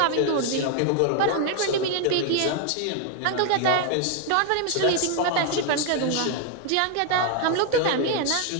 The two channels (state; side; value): different; both; correlation 0.00